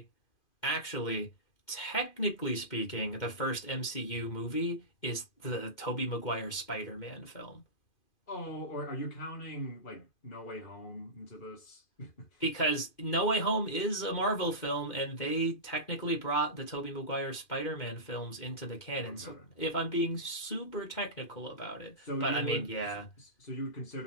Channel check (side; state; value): right; late; 2.5 ms